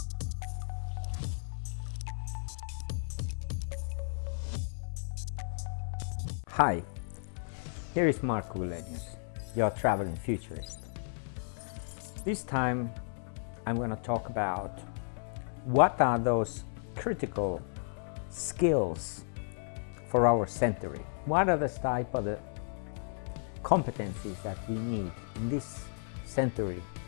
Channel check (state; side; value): silent; right; 55 dB below the other